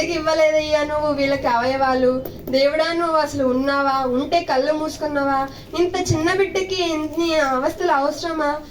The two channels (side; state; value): both; identical; correlation 1.00